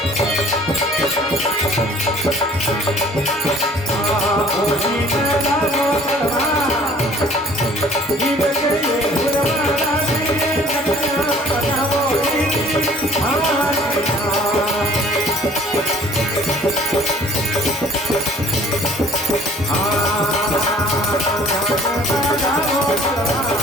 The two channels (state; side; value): normal; both; correlation 0.53